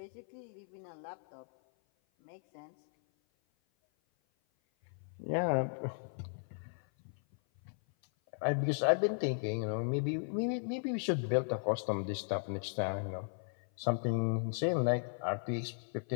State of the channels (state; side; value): silent; right; 54 dB below the other